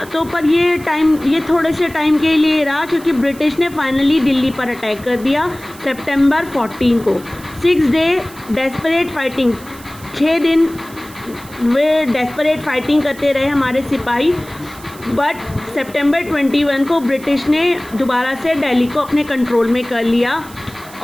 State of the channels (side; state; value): right; noise; hiss, 20 dB below the sound